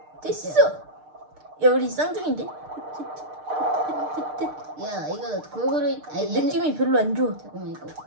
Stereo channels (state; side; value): late; left; 6.6 ms